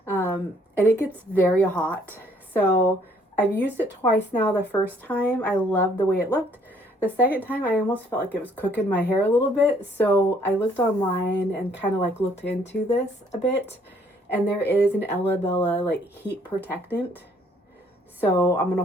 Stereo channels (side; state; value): both; normal; correlation 0.63